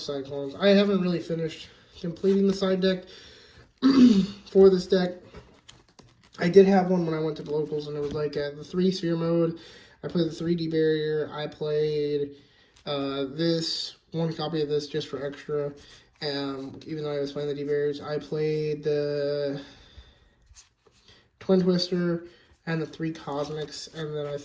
I haven't really finished completing the side deck for this deck. I did have one when I went to the locals, and it was like the 3 Sphere mode. I played the 3D Barrier. I played this, 1 copy of this just for extra. Even though I was playing the D-Barriers, I played the Twin Twister and the 3 Cosmics, and then I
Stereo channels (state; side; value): identical; both; correlation 1.00